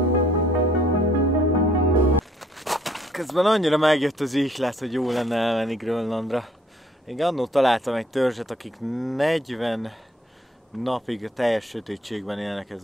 Közben annyira megjött az ihlet, hogy jó lenne elmenni Grönlandra. Én annól találtam egy törzset, akik 40 napig a teljes sötétségben élnek, ez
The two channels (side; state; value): both; normal; correlation 0.62